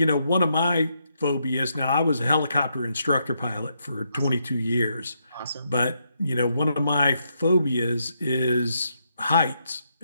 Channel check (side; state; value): both; inverted; correlation -0.78